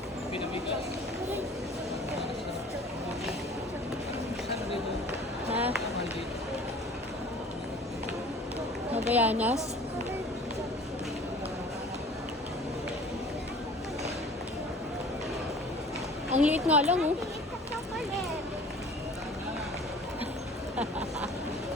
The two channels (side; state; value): both; normal; correlation 0.46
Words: Pinamigas. Saan dito? Ha? Mahal dito. Mabayanas? Ang liit nga lang, oh.